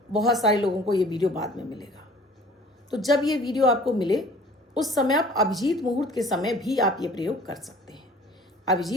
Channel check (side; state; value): both; normal; correlation 0.49